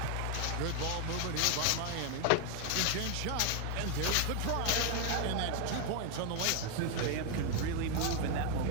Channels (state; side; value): different; both; correlation 0.00